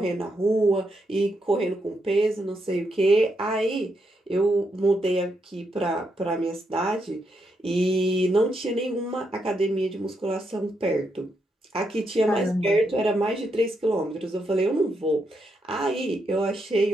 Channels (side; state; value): both; normal; correlation 0.80